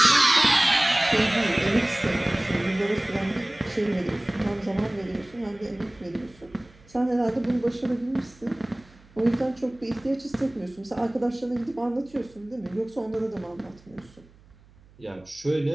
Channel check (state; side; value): noise; right; hum, 27 dB below the sound